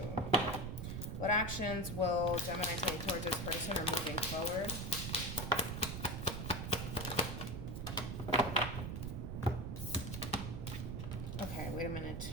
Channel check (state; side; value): noise; right; rumble, 4 dB below the sound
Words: What actions will Gemini take towards this person or moving forward? Okay, wait a minute.